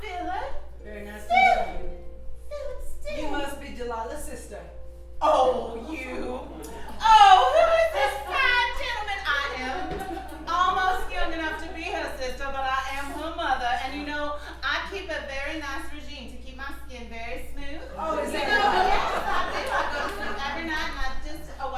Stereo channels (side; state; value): both; identical; correlation 1.00